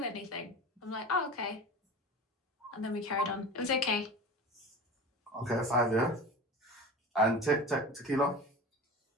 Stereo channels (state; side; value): normal; both; correlation 0.33